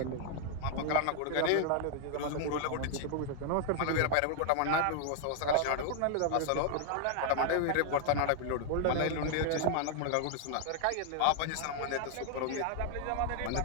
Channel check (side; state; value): both; different; correlation 0.00